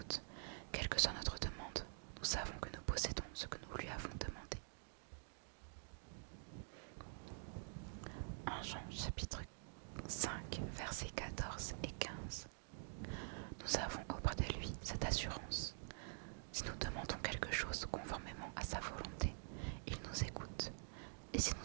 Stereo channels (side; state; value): left; silent; digital silence